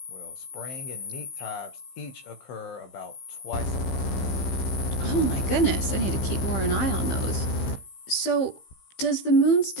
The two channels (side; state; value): right; late; 15 ms